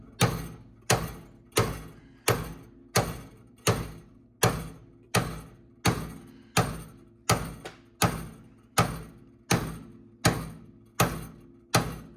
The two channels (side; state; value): both; identical; correlation 1.00